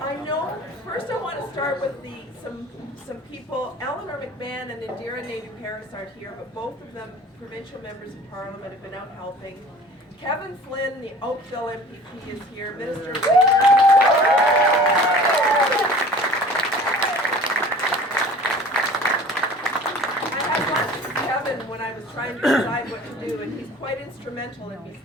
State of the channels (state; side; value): normal; both; correlation 0.45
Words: I know, first I want to start with some people. Eleanor McMahon and Indira Naidoo-Paris aren't here, but both of them, provincial members of Parliament, have been out helping. Kevin Flynn, the Oakville MPP, is here. Minister of Labour. I had lunch with Kevin when I was trying to decide what to do, and he's quite instrumental in me